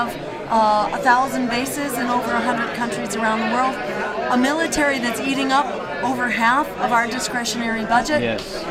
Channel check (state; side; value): identical; both; correlation 1.00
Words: 1,000 bases in over 100 countries around the world. A military that's eating up over half of our discretionary budget,